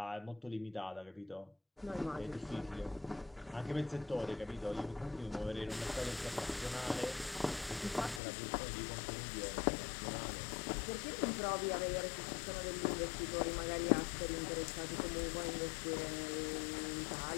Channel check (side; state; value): right; drops out; at 8.2 s